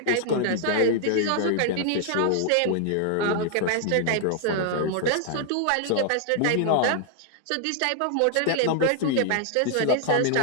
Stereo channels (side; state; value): both; different; correlation 0.00